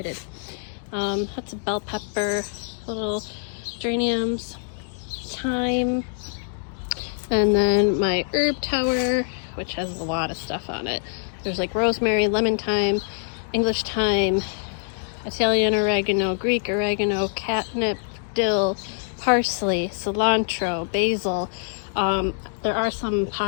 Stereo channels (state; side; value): silent; right; digital silence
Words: Lots of bell pepper, little geraniums, thyme, and then my herb tower, which has a lot of stuff on it. There's like rosemary, lemon thyme, English thyme, Italian oregano, Greek oregano, catnip, dill, parsley, cilantro, basil. There are some